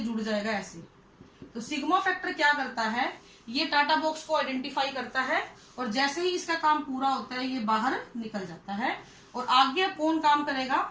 जुड़ जाएगा ऐसे। तो सिग्मा फैक्टर क्या करता है, ये टाटा बॉक्स को आइडेंटिफाई करता है और जैसे ही इसका काम पूरा होता है ये बाहर निकल जाता है। और आगे कौन काम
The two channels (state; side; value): identical; both; correlation 1.00